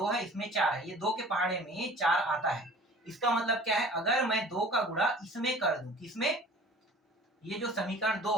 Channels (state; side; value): normal; both; correlation 0.46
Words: है, इसमें 4 है, ये 2 के पहाड़े में 4 आता है। इसका मतलब क्या है, अगर मैं 2 का गुणा इसमें कर दूं, किसमें, ये जो समीकरण